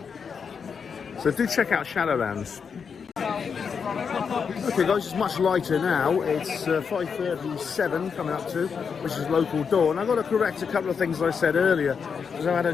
So do check out Shadowlands. Okay guys, it's much lighter now. It's 5:37 coming up to, which is local dawn. I've got to correct a couple of things I said earlier, because I had a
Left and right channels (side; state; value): right; quieter; 6.2 dB